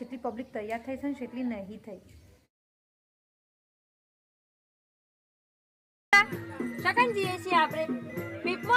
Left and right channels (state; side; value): identical; both; correlation 1.00